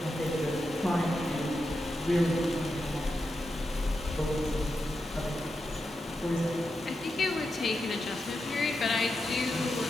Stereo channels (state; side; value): normal; both; correlation 0.87